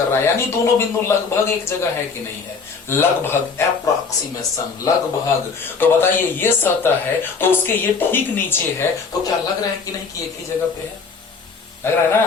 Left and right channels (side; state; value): right; quieter; 5.0 dB